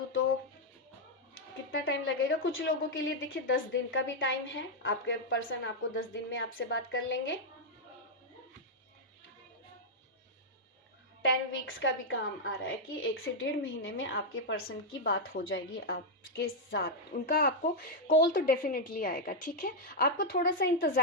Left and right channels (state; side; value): normal; both; correlation -0.02